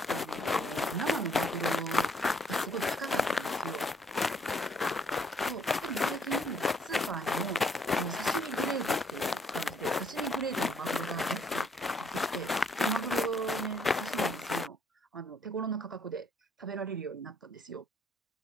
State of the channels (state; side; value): normal; both; correlation 0.66